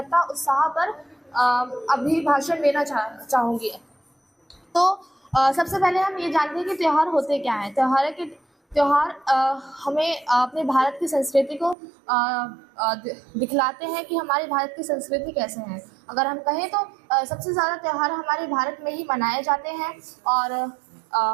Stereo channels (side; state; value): left; drops out; at 11.8 s